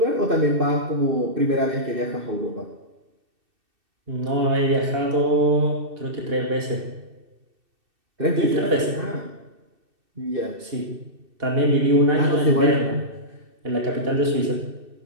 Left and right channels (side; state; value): left; late; 2.6 ms